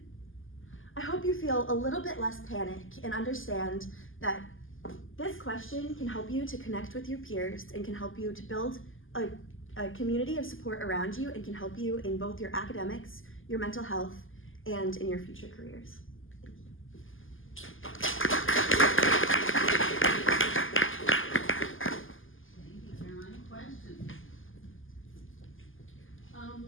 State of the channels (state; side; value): late; right; 0.58 ms